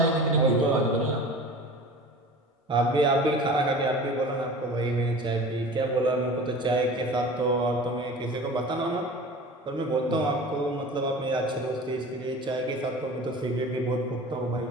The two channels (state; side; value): normal; both; correlation 0.39